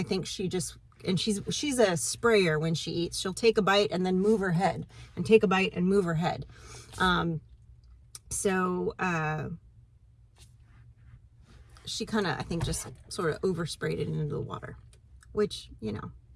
think she just, and she's a sprayer when she eats. She'll take a bite and then move her head, and take a bite and move her head. She kind of, I think, just sort of oversprayed it into the water, which, you know,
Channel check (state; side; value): identical; both; correlation 1.00